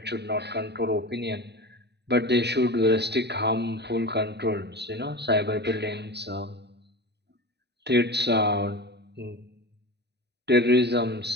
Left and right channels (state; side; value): late; left; 0.49 ms